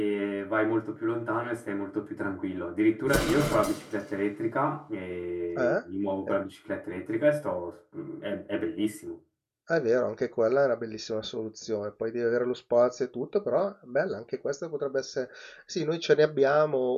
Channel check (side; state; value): both; identical; correlation 1.00